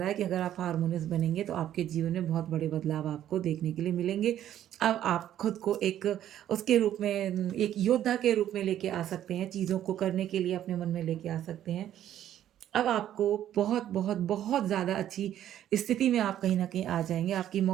है कि अगर आप हार्मोनियस बनेंगे तो आपके जीवन में बहुत बड़े बदलाव आपको देखने के लिए मिलेंगे। अब आप खुद को एक उसके रूप में एक योद्धा के रूप में लेके आ सकते हैं, चीज़ों को करने के लिए अपने मन में लेके आ सकते हैं। अब आपको बहुत, बहुत, बहुत ज़्यादा अच्छी स्थिति में आप कहीं न कहीं आ जाएँगे, आपकी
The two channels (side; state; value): left; quieter; 11.5 dB